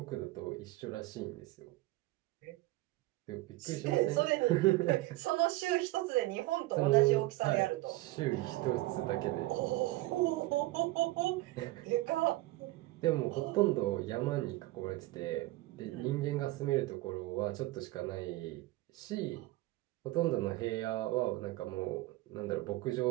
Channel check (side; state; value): left; quieter; 18.7 dB